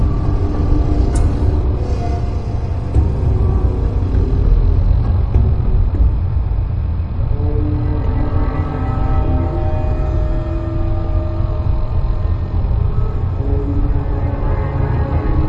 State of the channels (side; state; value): both; identical; correlation 1.00